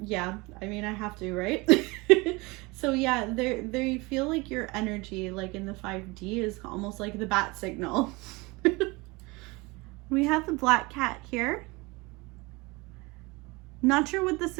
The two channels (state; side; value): quieter; left; 24.8 dB